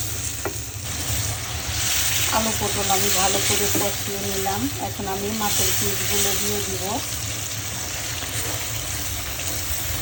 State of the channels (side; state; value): both; identical; correlation 1.00